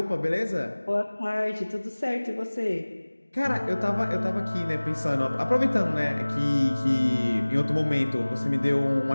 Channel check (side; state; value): both; inverted; correlation -1.00